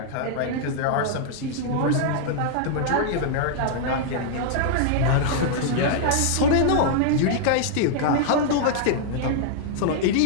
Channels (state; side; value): different; both; correlation -0.01